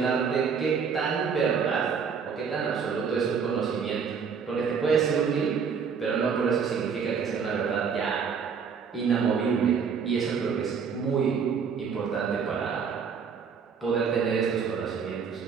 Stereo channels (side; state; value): left; quieter; 6.2 dB